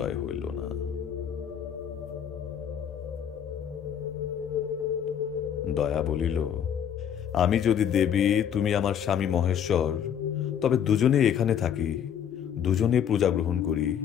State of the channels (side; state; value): right; quieter; 8.8 dB